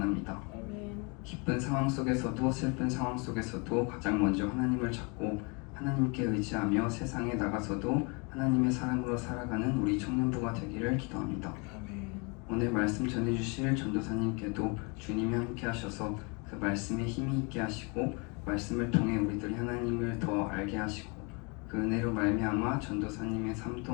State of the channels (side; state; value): right; quieter; 31.7 dB